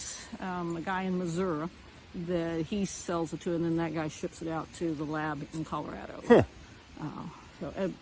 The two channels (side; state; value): both; identical; correlation 1.00